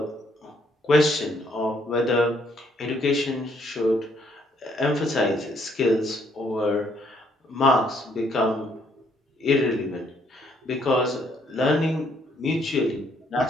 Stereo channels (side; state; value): both; normal; correlation 0.69